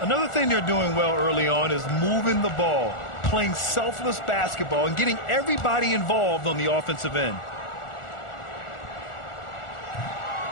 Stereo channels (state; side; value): late; right; 1.4 ms